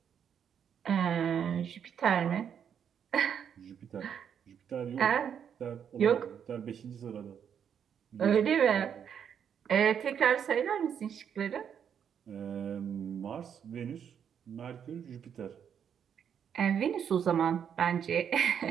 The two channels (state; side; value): quieter; left; 8.1 dB